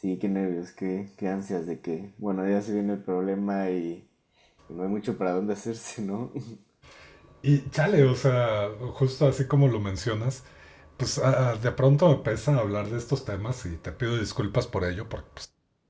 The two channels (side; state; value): both; identical; correlation 1.00